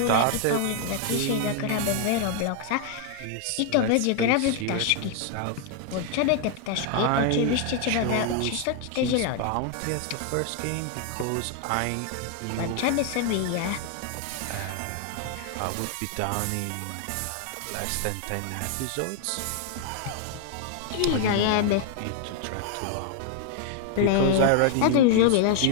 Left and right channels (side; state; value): both; different; correlation 0.00